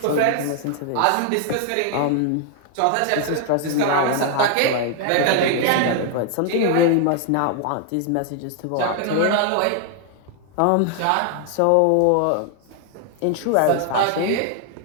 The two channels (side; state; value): both; different; correlation 0.00